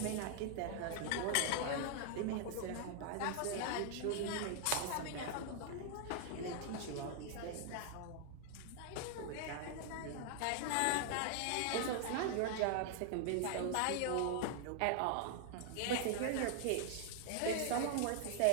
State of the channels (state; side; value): different; both; correlation 0.00